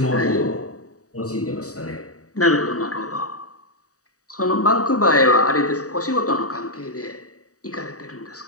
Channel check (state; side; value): late; right; 0.66 ms